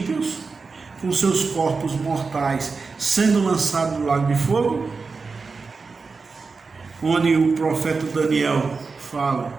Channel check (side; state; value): left; quieter; 4.5 dB